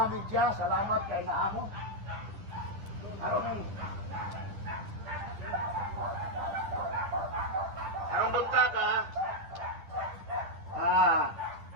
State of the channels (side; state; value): left; late; 10 ms